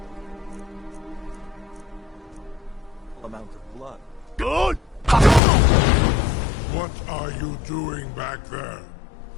amount of blood. Good! What are you doing back there?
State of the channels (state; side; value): drops out; right; at 5.4 s